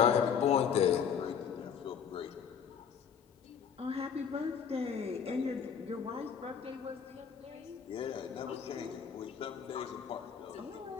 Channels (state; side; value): quieter; right; 7.4 dB